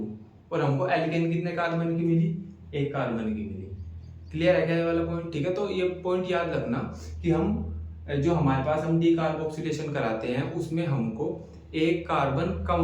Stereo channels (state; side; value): identical; both; correlation 1.00